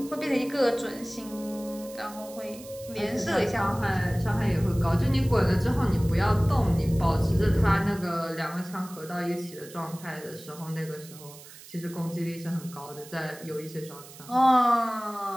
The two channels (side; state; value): right; noise; hiss, 18 dB below the sound